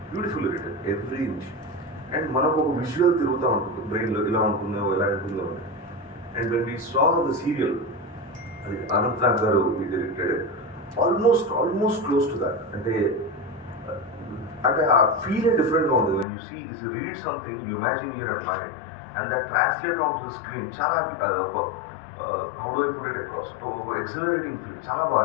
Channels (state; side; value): drops out; right; at 16.2 s